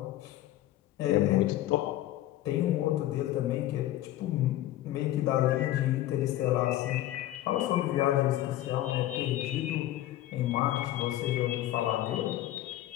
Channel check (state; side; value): quieter; right; 14.3 dB